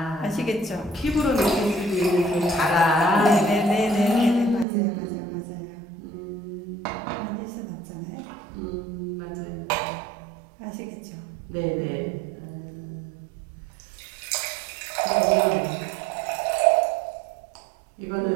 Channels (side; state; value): left; drops out; at 4.7 s